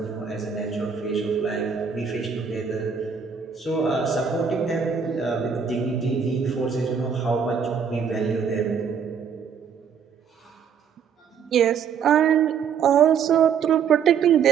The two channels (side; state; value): left; quieter; 6.9 dB